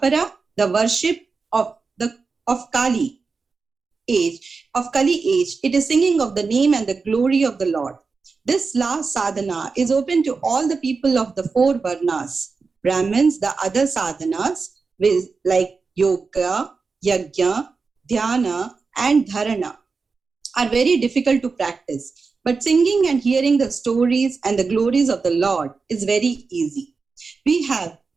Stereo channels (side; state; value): left; quieter; 4.6 dB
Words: the worship of Kali age, it is singing of the name and the glory of the Lord. This last sadhana is open to all the people of the four varnas. Brahmins, the other sadhanas, like yoga, yajna, dhyana, and dharana, are very difficult to practice. But singing and hearing the stories and the glories of the Lord is very easy. We have